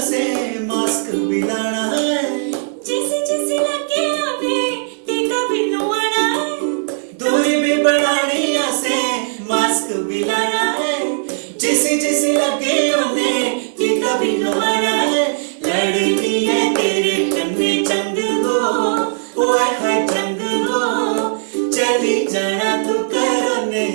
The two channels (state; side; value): silent; left; digital silence